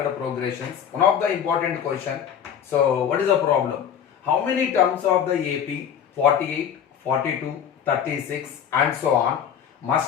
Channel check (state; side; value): quieter; right; 8.5 dB